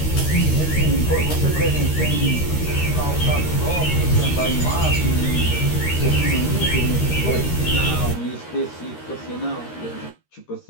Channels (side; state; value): right; late; 13 ms